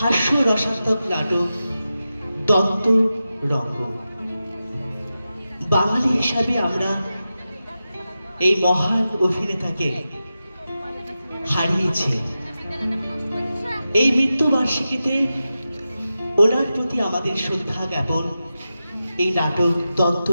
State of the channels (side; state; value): both; inverted; correlation -0.92